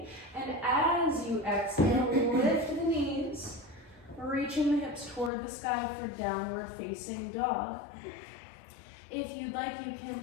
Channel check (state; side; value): drops out; right; at 5.3 s